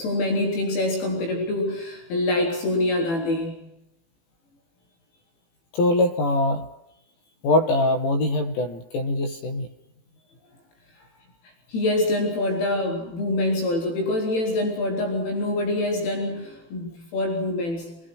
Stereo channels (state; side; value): late; right; 18 ms